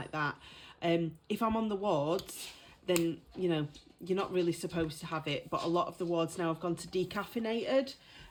that. If I'm on the wards, then, you know, you're not really supposed to have it. But a lot of the wards now have gone to decaffeinated,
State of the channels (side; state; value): both; identical; correlation 1.00